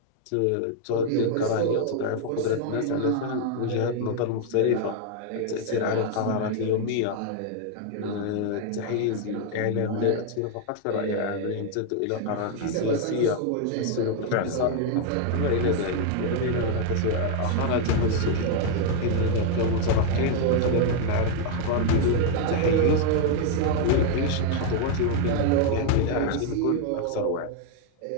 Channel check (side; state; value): both; different; correlation 0.00